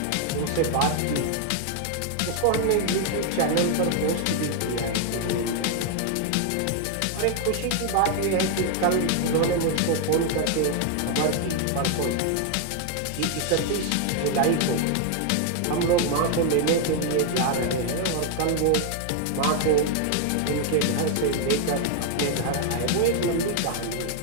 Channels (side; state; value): both; different; correlation 0.01